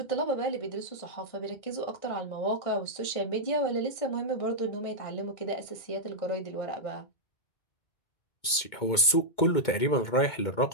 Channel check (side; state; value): right; late; 2.2 ms